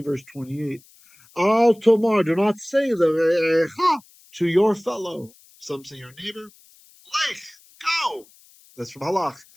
verse 28. Al Tomar, do not say the to your fellow. Some say your neighbor. Lech, go. That's from Halach.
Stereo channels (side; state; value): left; noise; hiss, 27 dB below the sound